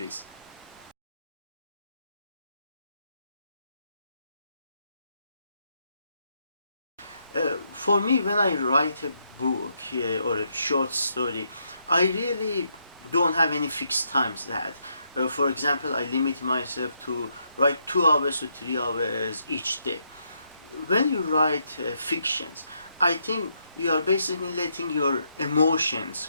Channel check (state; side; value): inverted; both; correlation -0.77